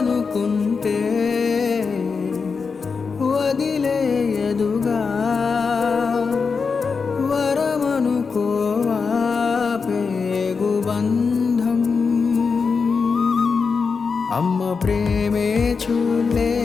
వదిలేయదుగా వరమనుకోవా పేగు బంధం అమ్మ ప్రేమే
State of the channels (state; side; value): quieter; right; 5.2 dB